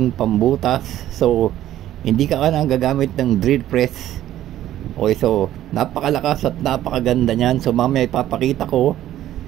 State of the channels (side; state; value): left; quieter; 12.9 dB